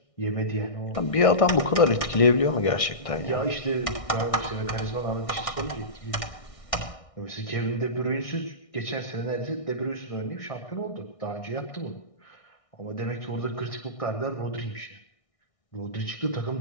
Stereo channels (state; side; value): late; right; 1.6 ms